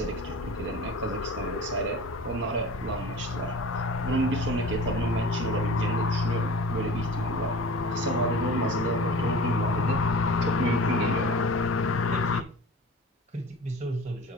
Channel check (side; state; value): both; normal; correlation 0.39